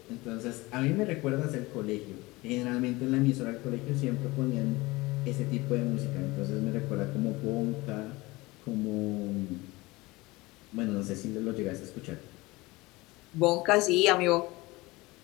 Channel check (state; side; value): quieter; right; 21.7 dB